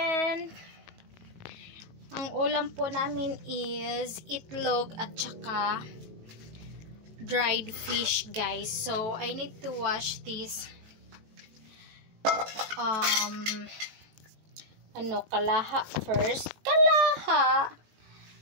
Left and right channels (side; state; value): left; late; 18 ms